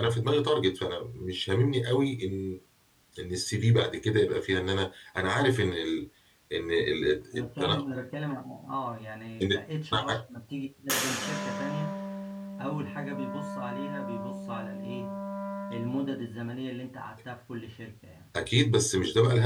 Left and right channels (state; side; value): identical; both; correlation 1.00